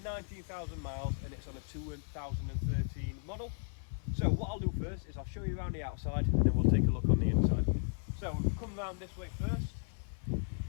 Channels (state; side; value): silent; right; 54 dB below the other